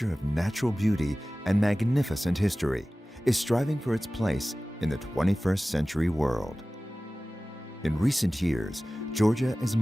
of natural beauty and magnificent history, is striving for its place in the 21st century world. In recent years, Georgia is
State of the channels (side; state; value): both; normal; correlation 0.97